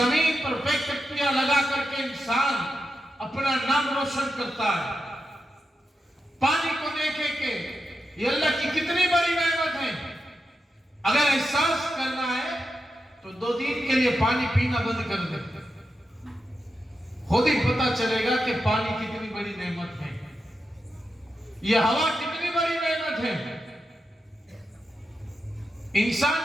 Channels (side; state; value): both; normal; correlation 0.88